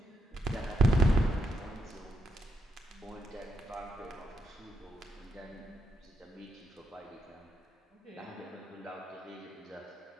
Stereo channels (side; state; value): both; normal; correlation 0.80